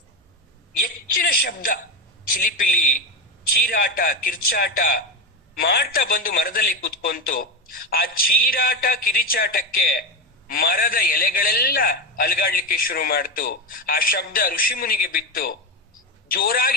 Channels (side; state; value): both; normal; correlation 0.15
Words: ಹೆಚ್ಚಿನ ಶಬ್ದ, ಚಿಲಿಪಿಲಿ, ಚೀರಾಟ, ಕಿರ್ಚಾಟ ಮಾಡ್ತಾ ಬಂದು ಮರದಲ್ಲಿ ಕೂತ್ಕೊಂತು. ಆ ಚೀರಾಟ ಕಿರಿಚಾಟಕ್ಕೆ ಮರದ ಎಲೆಗಳೆಲ್ಲ ಅಲಗಾಡ್ಲಿಕ್ಕೆ ಶುರು ಮಾಡ್ತು. ಆ ಶಬ್ದ ಋಷಿಮುನಿಗೆ ಬಿತ್ತು.